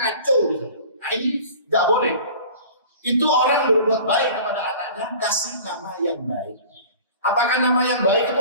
gitu. Nah ini nggak boleh. Itu orang berbuat baik kepada anaknya, kasih nama yang baik. Apakah nama yang baik itu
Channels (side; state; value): both; inverted; correlation -0.42